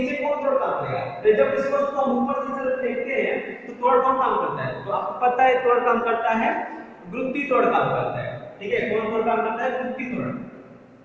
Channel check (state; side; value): identical; both; correlation 1.00